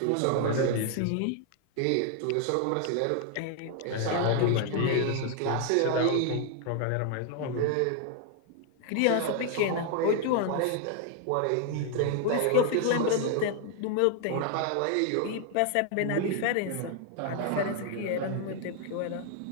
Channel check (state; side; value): different; both; correlation 0.00